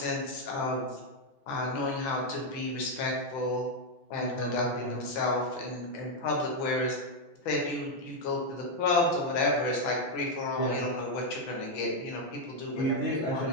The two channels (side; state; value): right; late; 6.0 ms